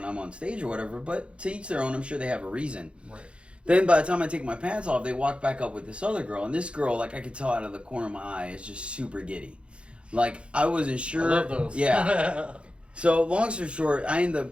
I'm on stage or whatever, but to each their own. I'm sure they have a reason. Right. Then by the time I take my pants off, they walk back up with this other girl, and this girl, I could tell out of the corner of my eye, is just super giddy. I wasn't sure. I love those. Yeah. So long story short, I end up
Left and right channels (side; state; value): left; late; 0.058 ms